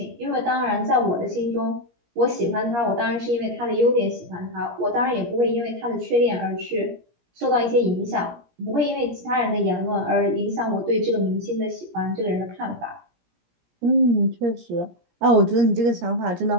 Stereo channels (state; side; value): late; left; 17 ms